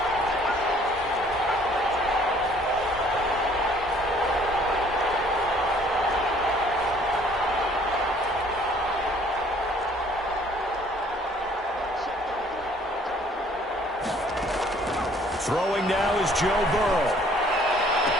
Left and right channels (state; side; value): normal; both; correlation 0.58